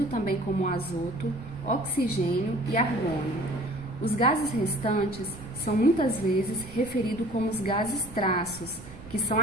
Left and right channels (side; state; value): right; noise; rumble, 16 dB below the sound